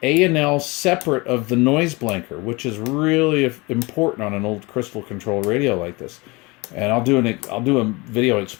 A&L separate of the noise blanker, which is really important on an old crystal control radio like this. And I'll do a video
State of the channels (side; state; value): right; quieter; 24.9 dB